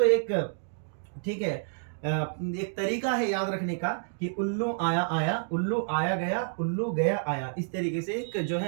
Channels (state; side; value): silent; left; digital silence